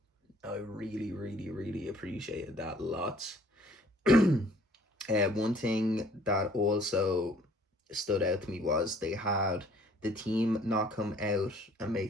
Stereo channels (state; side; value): normal; both; correlation 0.57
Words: I really, really, really appreciated that lots. One thing that also stood out to me was they had the team not come out and